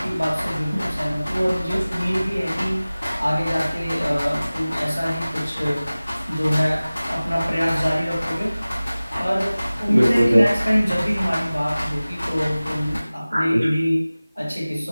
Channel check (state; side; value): inverted; both; correlation -0.98